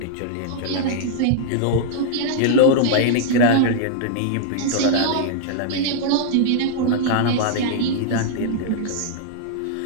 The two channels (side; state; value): both; different; correlation -0.01